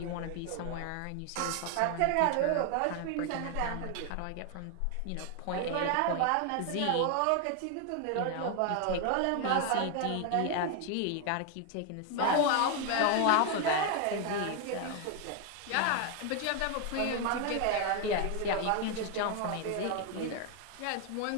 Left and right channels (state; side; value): different; both; correlation 0.01